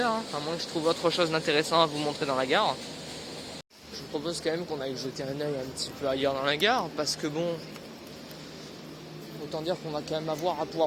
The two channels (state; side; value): identical; both; correlation 1.00